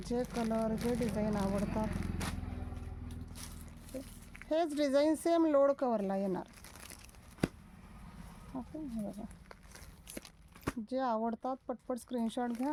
जे कलर जे डिझाईन आवडतात हेच डिझाईन सेम लोड कवरला येणार. ओके, हे बघा, जे आवडतात पटपट स्क्रीनशॉट घ्या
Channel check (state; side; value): identical; both; correlation 1.00